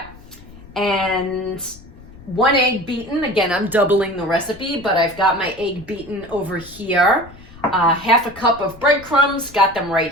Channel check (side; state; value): left; noise; rumble, 21 dB below the sound